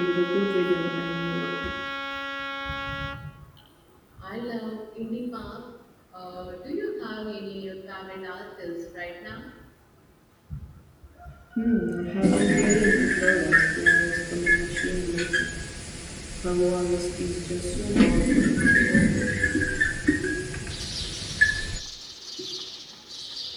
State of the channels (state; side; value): identical; both; correlation 1.00